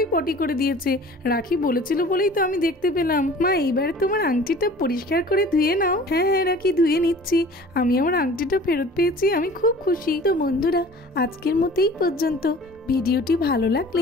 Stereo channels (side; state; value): both; normal; correlation 0.45